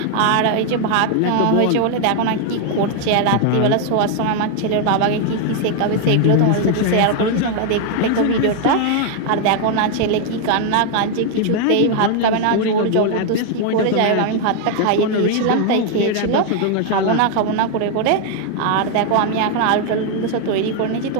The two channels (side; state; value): both; different; correlation 0.00